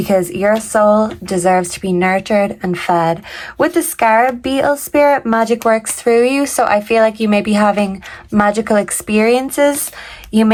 your soul deserves to be nurtured and fed. With the scarab beetle spirit, magic works through you, so I feel like you may be having magical experiences. You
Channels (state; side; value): identical; both; correlation 1.00